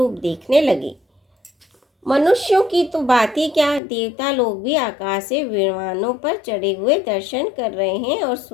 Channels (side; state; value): right; drops out; at 3.8 s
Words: देखने लगे। मनुष्यों की तो बात ही क्या, देवता लोग भी आकाश से विमानों पर चढ़े हुए दर्शन कर रहे हैं और